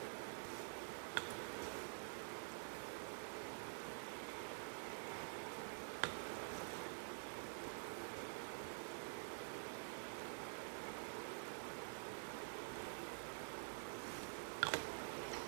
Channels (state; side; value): silent; left; digital silence